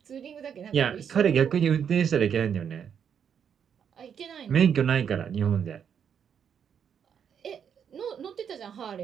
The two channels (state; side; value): quieter; left; 7.8 dB